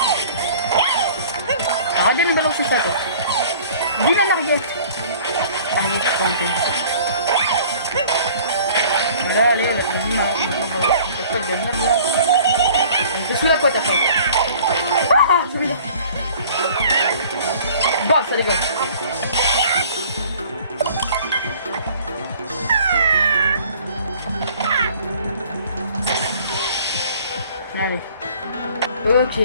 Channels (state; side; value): inverted; both; correlation -0.50